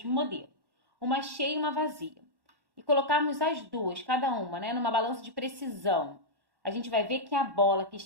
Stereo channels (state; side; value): late; left; 1.1 ms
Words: modelo. Uma cheia e uma vazia. E colocarmos as duas, cada uma, né? Numa balança de precisão. A gente vai ver que a bola que